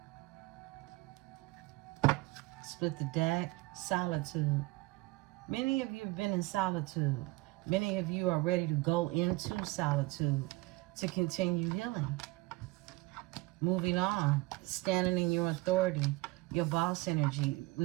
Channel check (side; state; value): left; quieter; 22.0 dB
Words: Split the deck. Solitude. Many of you have been in solitude. Many of you are ready to go into solitude to continue healing. Moving on. Standing in your authority. Your boss energy.